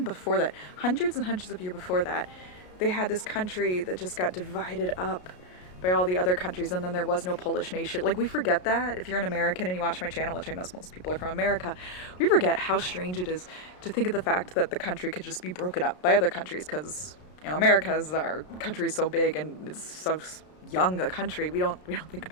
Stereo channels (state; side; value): late; right; 33 ms